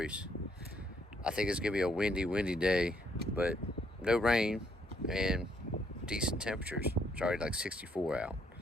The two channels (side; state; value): both; normal; correlation 0.70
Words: I think it's gonna be a windy day, but no rain and decent temperatures. It's already like 64 out.